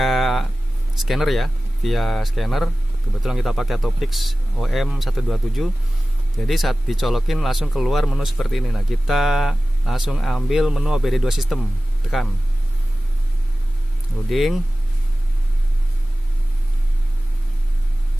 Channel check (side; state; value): both; normal; correlation 0.96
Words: scanner ya. Via scanner. Kebetulan kita pakai Topix OM127. Jadi saat dicolokin langsung keluar menu seperti ini. Nah, kita langsung ambil menu OBD2 sistem, tekan loading.